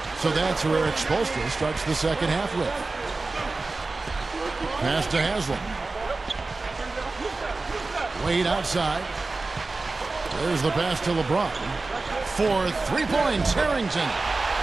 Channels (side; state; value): left; quieter; 3.5 dB